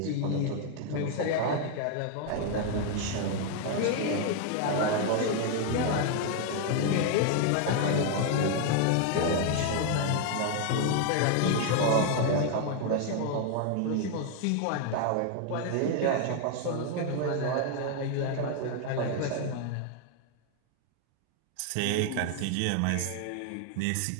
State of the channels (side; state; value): both; different; correlation 0.00